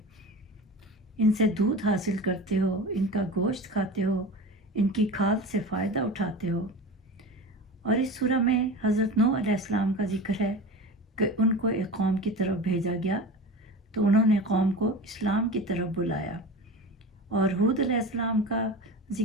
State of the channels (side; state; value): both; normal; correlation 0.31